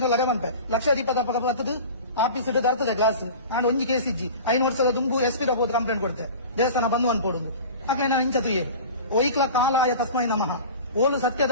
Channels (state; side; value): inverted; both; correlation -0.36